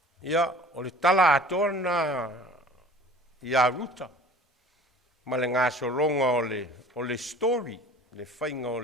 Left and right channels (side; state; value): both; normal; correlation 0.46